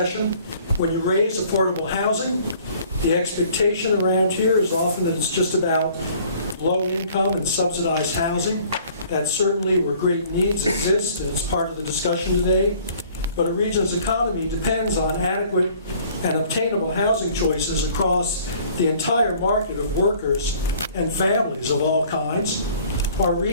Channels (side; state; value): both; inverted; correlation -0.54